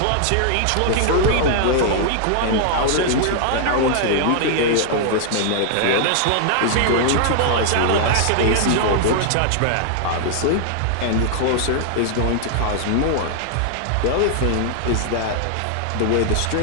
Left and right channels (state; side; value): different; both; correlation -0.01